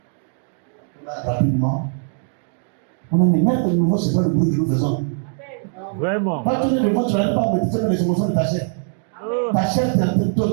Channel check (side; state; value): left; silent; 65 dB below the other